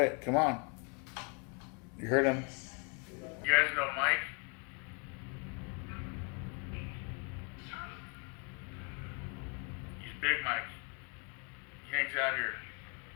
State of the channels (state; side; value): quieter; right; 36.0 dB